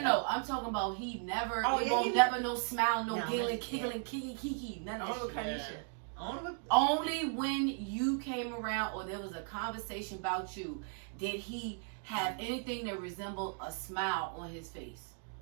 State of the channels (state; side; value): silent; left; 54 dB below the other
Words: I'm talking about he never. Oh, He yeah, won't he- never no smile, no No, giggling, yeah. giggling, kiki, none of Only that kind shit. of shit. Only Only when you came around or there was a conversation about you did he have anything that resembled a smile on his face.